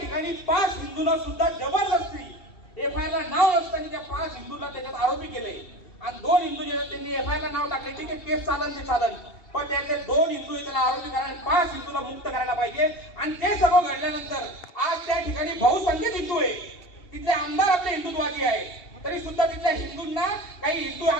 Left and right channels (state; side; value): late; right; 2.7 ms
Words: 5 हिंदूंना सुद्धा जबरदस्ती एफआयआर ला नाव नसताना त्या 5 हिंदूंना त्याच्यात आरोपी केले. आणि 2 हिंदू जे त्यांनी एफआयआर ला नाव टाकले, ठीक आहे केस चालन, पण त्यातले 2 हिंदू त्याला आरोपी करा, 5 हिंदूला मुक्त करायला पाहिजे. आणि ते सगळं घडल्यानंतर आज त्या ठिकाणी बहुसंख्येत हिंदू आहे, तिथले आमदार आपले हिंदुत्वादी आहे, तरी सुद्धा तिथल्या हिंदूंना काही हिंदू